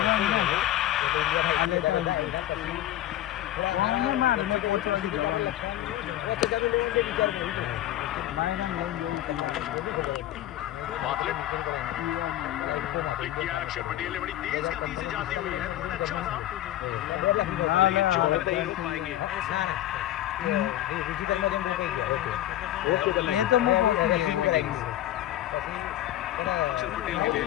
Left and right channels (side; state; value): right; quieter; 13.5 dB